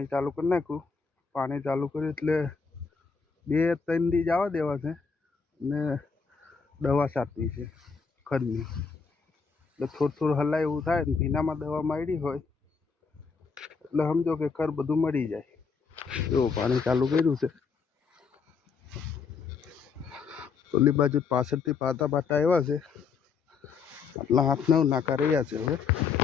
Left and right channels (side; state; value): right; quieter; 5.4 dB